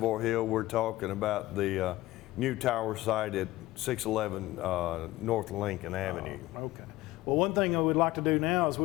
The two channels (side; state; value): right; quieter; 17.5 dB